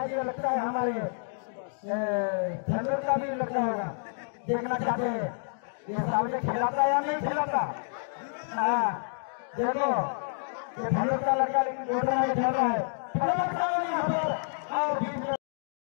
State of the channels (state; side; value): silent; right; digital silence